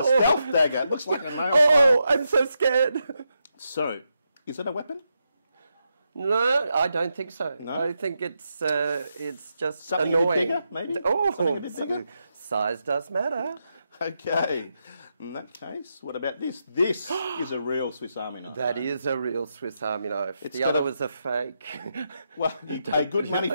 stealth dagger. It looks like a nail. Oh, I'm so scared. So, is it a weapon? No, I don't think so. No? I think it's just Something a bit annoying. bigger, maybe? Oh, Something a bit bigger? Size does matter. Okay. In that case, what about this? This is a real Swiss Army knife. That is a real Swiss Army knife. It's The got other a- was a fake. Well, you pay good money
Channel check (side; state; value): both; inverted; correlation -0.84